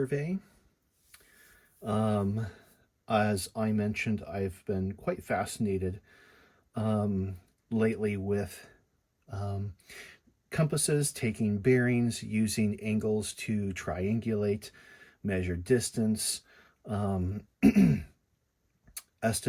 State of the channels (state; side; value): identical; both; correlation 1.00